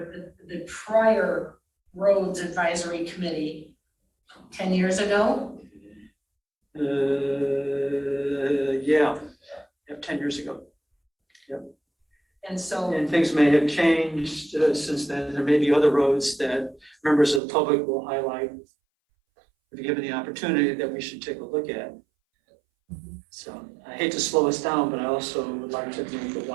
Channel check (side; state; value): left; drops out; at 17.4 s